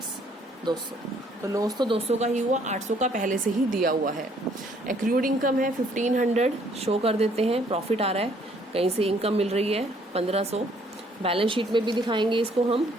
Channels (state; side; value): normal; both; correlation 0.64